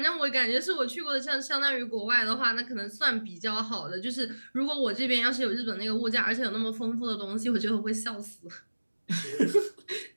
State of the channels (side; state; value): both; inverted; correlation -1.00